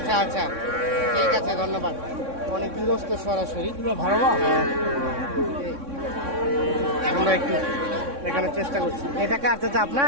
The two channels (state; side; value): late; left; 3.6 ms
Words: ঠিক আছে, ধন্যবাদ। অনেক বিরস্ত সরাসরি। আমরা একটু দেখানোর চেষ্টা করছি। এটা কার চাচা